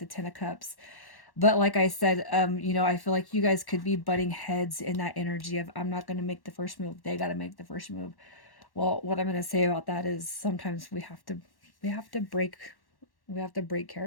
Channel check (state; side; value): late; right; 1.1 ms